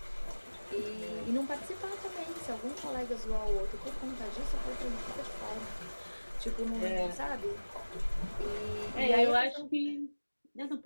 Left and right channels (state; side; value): inverted; both; correlation -1.00